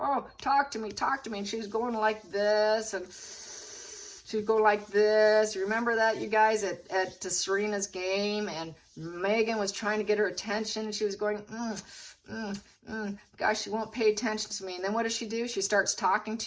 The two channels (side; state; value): both; identical; correlation 1.00